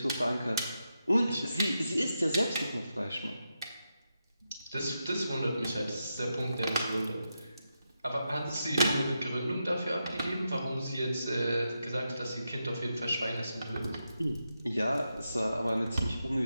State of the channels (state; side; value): inverted; both; correlation -0.87